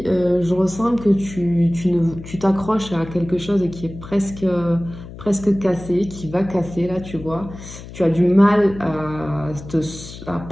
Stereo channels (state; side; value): noise; left; hum, 14 dB below the sound